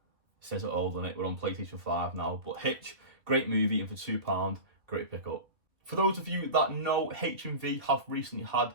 it says it old on it. We're on PlayStation 5 now. But Hitch, great movie, and for £2, great pickup. For those of you that know, HMV have recently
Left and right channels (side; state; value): left; late; 2.5 ms